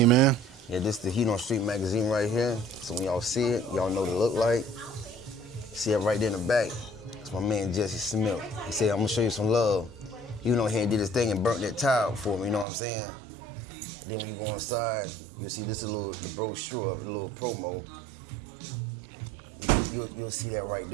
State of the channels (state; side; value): drops out; left; at 12.7 s